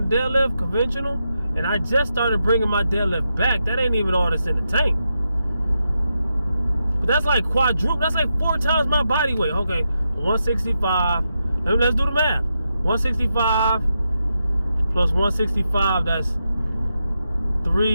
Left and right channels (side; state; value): both; inverted; correlation -0.86